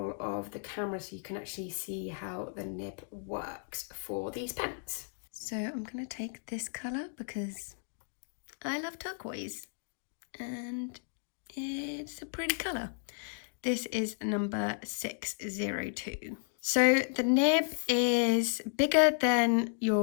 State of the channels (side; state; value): right; silent; digital silence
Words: of the camera so you can actually see how the nib works for these pens. So I'm gonna take this colour because I love turquoise, and it is a pretty colour. This is number 602. So the nib is bigger than